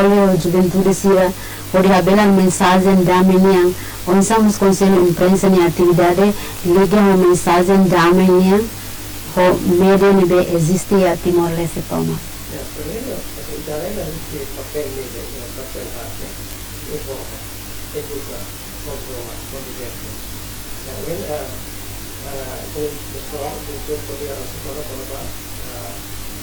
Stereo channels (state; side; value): identical; both; correlation 1.00